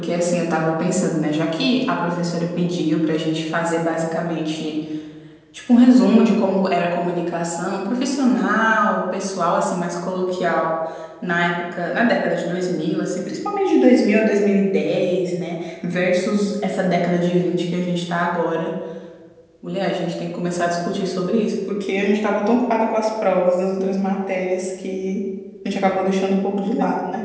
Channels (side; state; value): both; identical; correlation 1.00